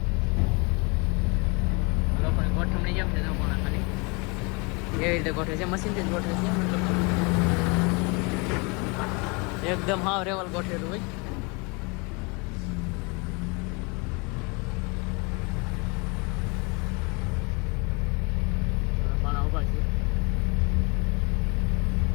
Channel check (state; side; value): quieter; right; 29.8 dB